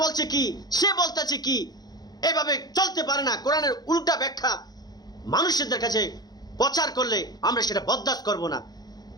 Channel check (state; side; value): late; right; 0.19 ms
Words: বলছে কি, সে বলতেছে কি, এভাবে চলতে পারে না। কোরআনের উল্টা ব্যাখ্যা মানুষদের কাছে প্রচার করলে আমরা সেটা বরদাস্ত করব না।